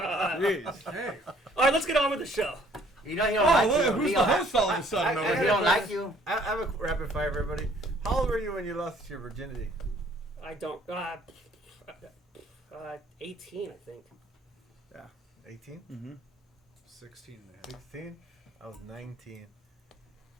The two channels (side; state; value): both; normal; correlation 0.60